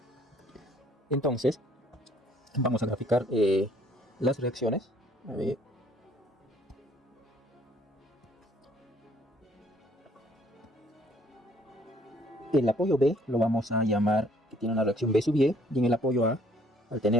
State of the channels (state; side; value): normal; both; correlation 0.61